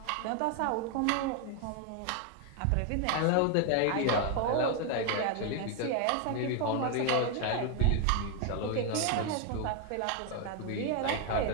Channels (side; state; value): both; different; correlation 0.01